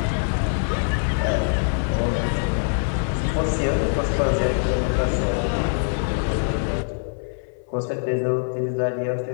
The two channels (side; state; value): right; silent; 60 dB below the other